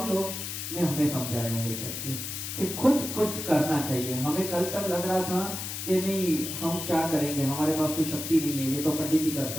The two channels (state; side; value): noise; left; hiss, 6 dB below the sound